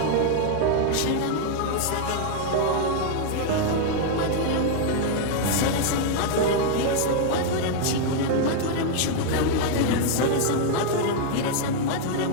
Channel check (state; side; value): different; both; correlation 0.00